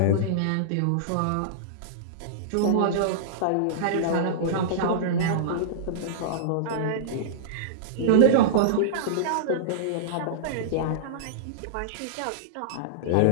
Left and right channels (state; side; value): different; both; correlation -0.03